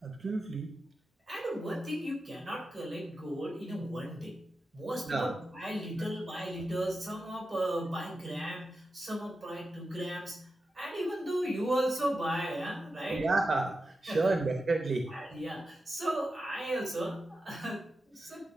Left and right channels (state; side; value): normal; both; correlation 0.90